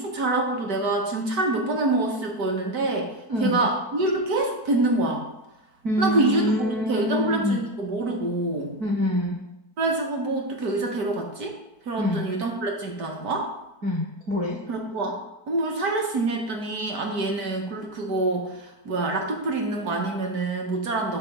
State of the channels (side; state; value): left; late; 4.5 ms